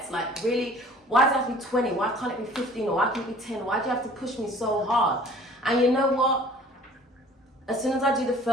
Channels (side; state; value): both; normal; correlation 0.50